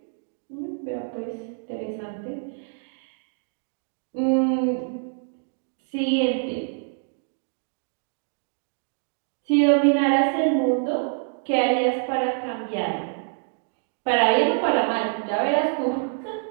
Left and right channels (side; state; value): left; silent; digital silence